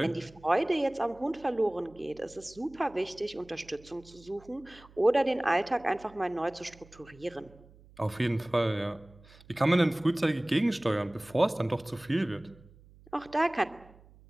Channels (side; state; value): right; noise; hum, 24 dB below the sound